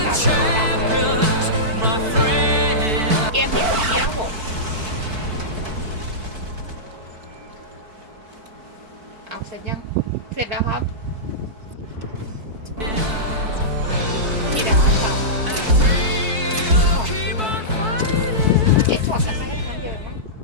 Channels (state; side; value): late; left; 4.6 ms